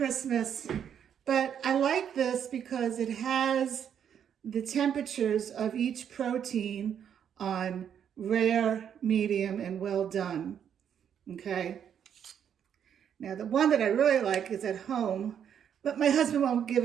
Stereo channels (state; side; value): quieter; left; 8.6 dB